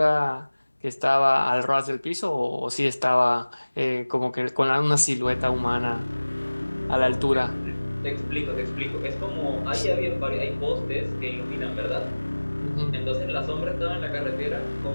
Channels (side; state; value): both; inverted; correlation -1.00